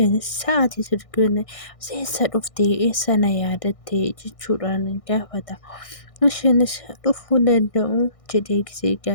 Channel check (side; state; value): right; late; 1.6 ms